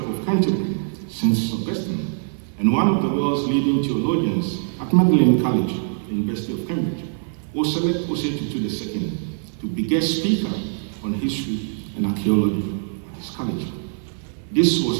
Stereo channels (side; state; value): left; silent; 57 dB below the other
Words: of Canterbury since Augustine, and one of the world's leading theologians at Magdalen College, University of Cambridge, was selected II to be guest speaker on history and archaeology at his college. This